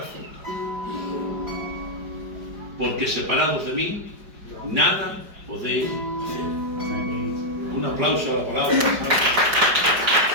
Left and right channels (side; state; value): left; late; 5.1 ms